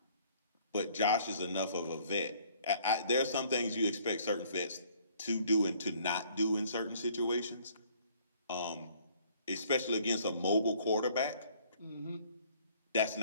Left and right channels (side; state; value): both; inverted; correlation -0.59